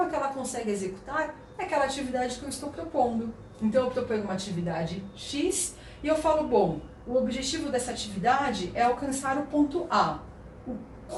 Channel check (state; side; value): identical; both; correlation 1.00